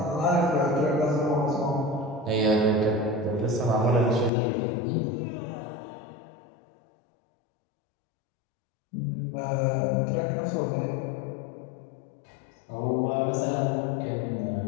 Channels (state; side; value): drops out; right; at 4.3 s